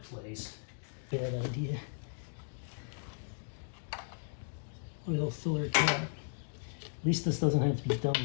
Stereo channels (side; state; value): right; silent; digital silence